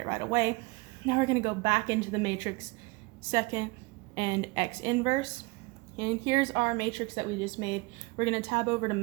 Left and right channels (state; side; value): quieter; left; 25.8 dB